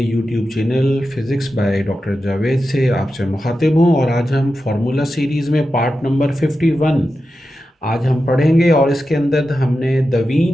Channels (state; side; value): normal; both; correlation 0.91